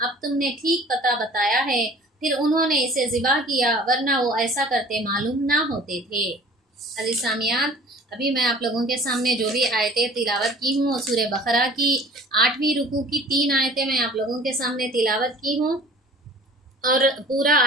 अब तुमने ठीक पता बताया है। फिर उन्होंने इसे ज़िबा किया, वरना वो ऐसा करते मालूम ना होते थे। अज़ीज़ सामियान, अभी मैं आप लोगों के सामने जो भी आयतें तिलावत की हूँ, सूरह बकरा की 8वीं रुकू की 3 आयतें मैं आप लोगों के सामने तिलावत की हूँ और पूरा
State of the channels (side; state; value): both; normal; correlation 0.47